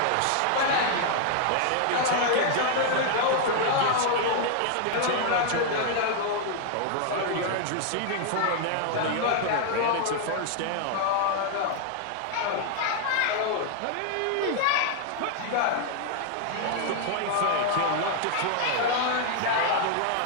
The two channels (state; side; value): different; both; correlation 0.00